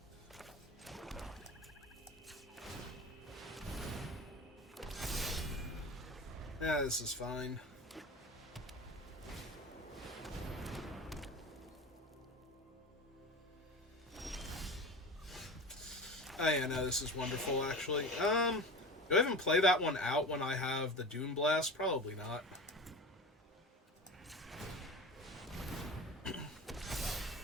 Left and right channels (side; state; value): both; normal; correlation 0.32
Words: Yeah, this is fine. Oh yeah, no, this is wonderful, actually. Do I even play that one out when I have the Dune Blast? Probably not.